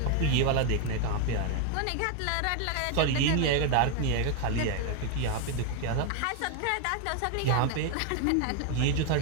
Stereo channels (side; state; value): both; different; correlation 0.01